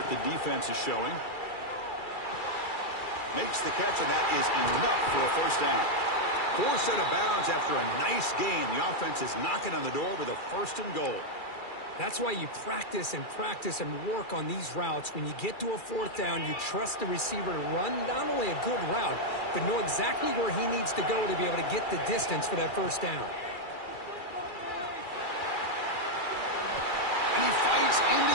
the defense is showing. Makes the catch, and that is enough for a 1st down. 4 set of bounds after a nice gain. The offense is knocking on the door with a 1st and goal. That's why you practice and work on these routes. When you get to a 4th down, you trust the receiver to run not only a good route, but know exactly where he needs to go to be able to get the distance for that 1st down. And he fights into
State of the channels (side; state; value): right; late; 2.3 ms